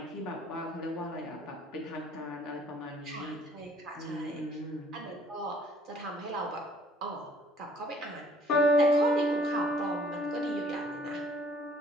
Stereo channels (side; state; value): both; normal; correlation 0.58